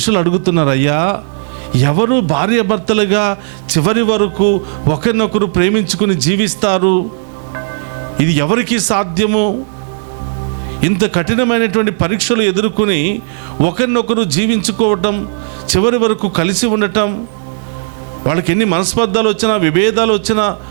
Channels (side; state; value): left; silent; digital silence